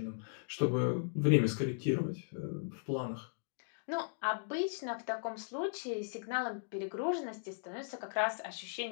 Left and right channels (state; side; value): silent; right; digital silence